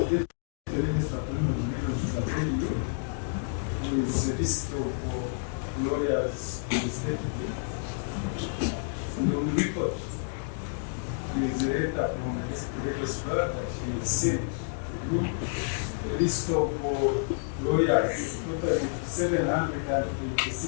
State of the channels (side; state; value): right; silent; digital silence